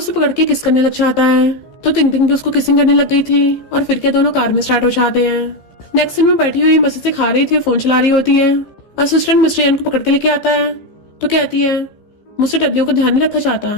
पकड़ के किस करने लग जाता है। तो टिंग उसको किसिंग करने लग गई थी और फिर क्या दोनों कार में स्टार्ट हो जाते हैं। नेक्स्ट सीन में बैठी हुई मजे से खा रही थी और फोन चला रही होती है। असिस्टेंट मिस्टर यान को पकड़ के लेके आता है तो कहती है मुझसे टड्डियों का ध्यान नहीं रखा चाहता,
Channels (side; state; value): right; late; 15 ms